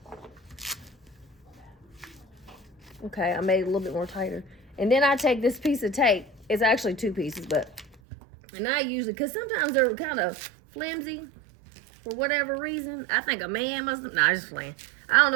Okay, I made it a little bit more tighter. And then I take this piece of tape. It's actually 2 pieces, but... And I usually... Because sometimes they're kind of flimsy. For whatever reason. I think a man must have... Nah, just playing. I don't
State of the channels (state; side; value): drops out; left; at 8.0 s